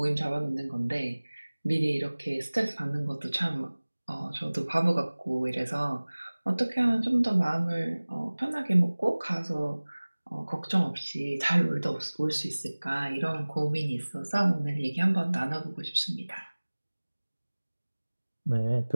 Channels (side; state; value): both; inverted; correlation -1.00